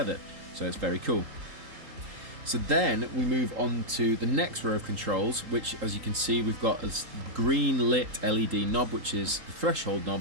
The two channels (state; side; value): late; left; 3.8 ms